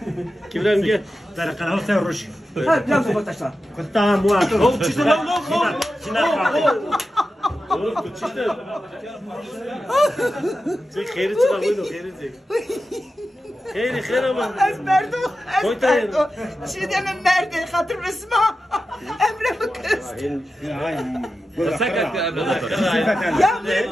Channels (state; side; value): normal; both; correlation 0.92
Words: Kimden gel? Tara kana sen ruş. Ha biraz bota şla. Kıtta muhatı. Oğlum çizdi lan. Oğlum tu çizdi. Sen kheri çıkar bunu kheri çek. Kheri ama. Ez merdo. Ez merdo. Şideme merde hatır resma. Emre bu kız. Sakat ya. Ya